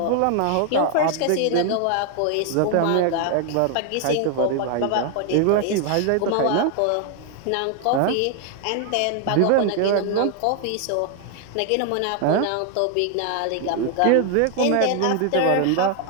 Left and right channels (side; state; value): both; different; correlation 0.00